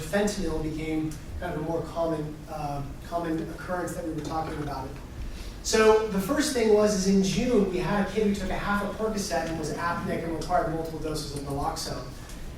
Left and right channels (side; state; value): both; identical; correlation 1.00